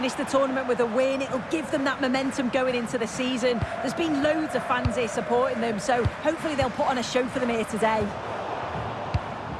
the tournament with a win. It'll give them that momentum going into the season. There's been loads of fans here supporting them, so hopefully they'll put on a show for them here today.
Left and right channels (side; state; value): both; identical; correlation 1.00